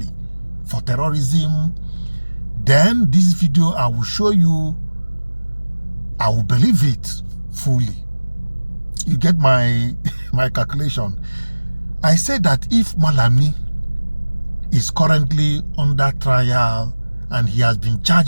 for terrorism, then this video I will show you, I will believe it fully. You get my my calculation. I said that if Malami is currently under trial and he has been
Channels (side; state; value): both; inverted; correlation -1.00